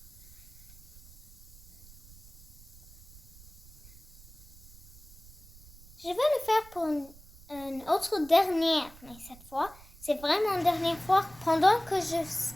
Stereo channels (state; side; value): noise; right; rumble, 21 dB below the sound